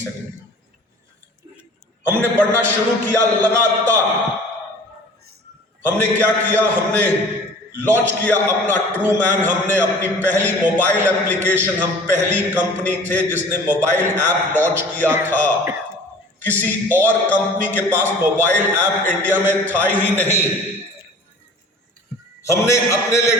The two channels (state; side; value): normal; both; correlation 0.45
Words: हमने पढ़ना शुरू किया लगातार। हमने क्या किया, हमने लॉन्च किया अपना ट्रू मैन, हमने अपनी पहली मोबाइल एप्लीकेशन, हम पहली कंपनी थे जिसने मोबाइल ऐप लॉन्च किया था। किसी और कंपनी के पास मोबाइल ऐप इंडिया में था ही नहीं। हमने अपने लिए